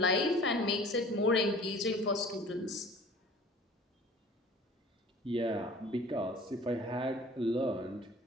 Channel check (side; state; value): both; normal; correlation 0.46